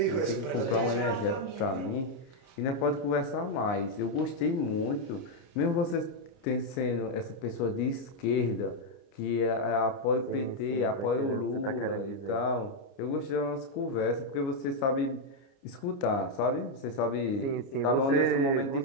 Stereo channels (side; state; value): right; late; 29 ms